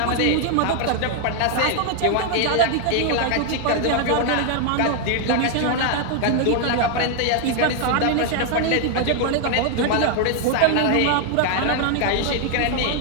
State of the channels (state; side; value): different; both; correlation 0.00